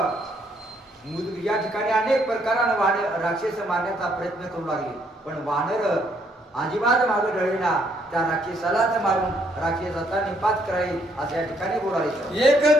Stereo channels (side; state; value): both; normal; correlation 0.70